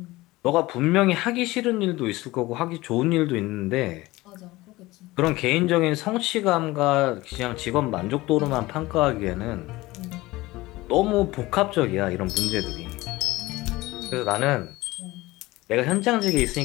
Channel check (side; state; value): right; quieter; 19.5 dB